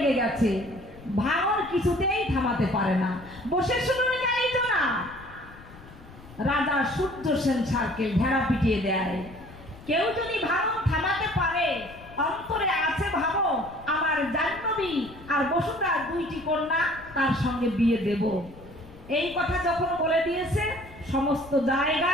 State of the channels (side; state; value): left; noise; rumble, 20 dB below the sound